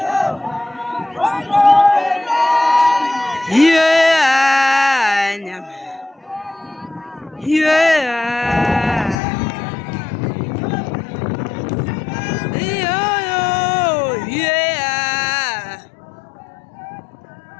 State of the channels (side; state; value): right; drops out; at 9.2 s